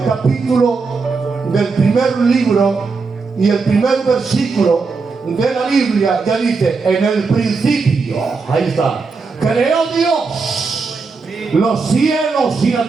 capítulo del primer libro y el primer versículo de la Biblia ya dice: en el principio, ahí está, creó Dios los cielos y la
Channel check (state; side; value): quieter; left; 4.5 dB